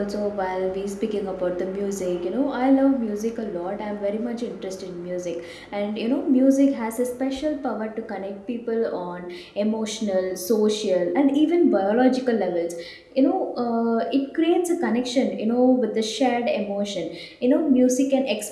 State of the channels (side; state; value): both; identical; correlation 1.00